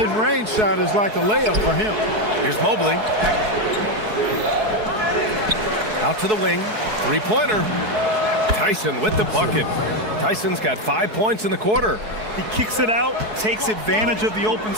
shot is like a layup for him. Here's Mobley. Out to the wing. Three-pointer. Tyson with the bucket. Tyson's got 5 points in the quarter. He kicks it out, takes advantage of the open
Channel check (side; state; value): left; late; 4.7 ms